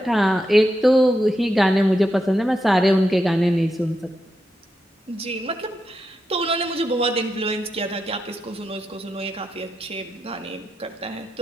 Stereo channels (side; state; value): both; normal; correlation 0.85